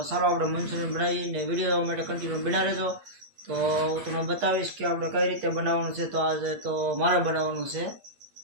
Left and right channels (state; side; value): late; left; 8.5 ms